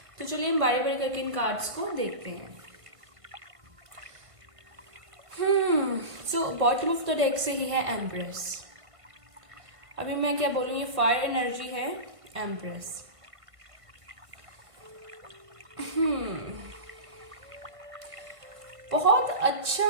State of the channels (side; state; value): left; late; 1.5 ms